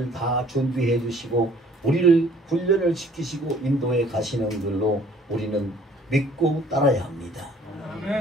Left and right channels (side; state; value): both; normal; correlation 0.56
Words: 다 준비해 주시고 우리를 훈련을 시키시고 인도해 가시는 걸로 우리는 믿고 따라야 합니다.